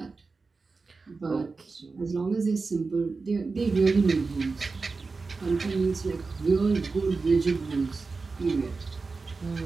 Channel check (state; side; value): quieter; left; 4.2 dB